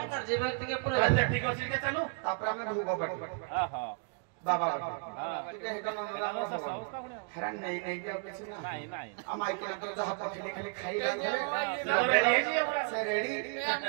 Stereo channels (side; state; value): left; quieter; 37.2 dB